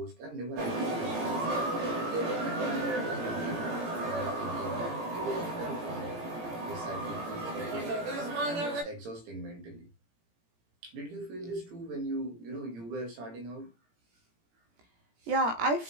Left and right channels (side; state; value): left; late; 17 ms